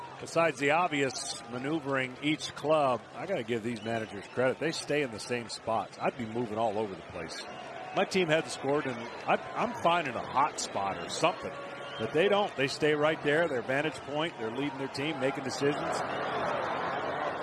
Besides the obvious maneuvering each club, I got to give these managers credit. They stay in the same spots. I'd be moving all over the place. My team hadn't scored, and I'm finding a hot spot or something. But they don't. They stay right there, their vantage point. They're leading their team, making decisions.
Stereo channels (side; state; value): both; identical; correlation 1.00